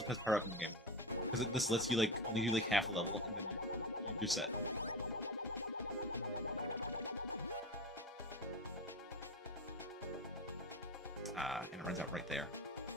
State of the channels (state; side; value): normal; both; correlation 0.24